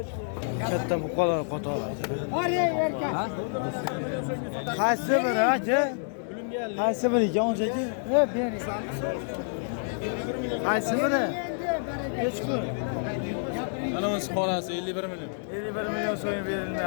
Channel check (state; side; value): silent; right; digital silence